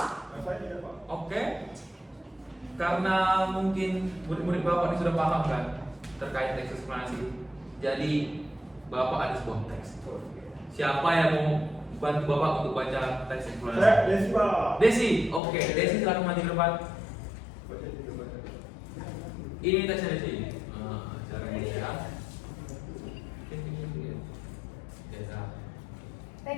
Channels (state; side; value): drops out; right; at 15.4 s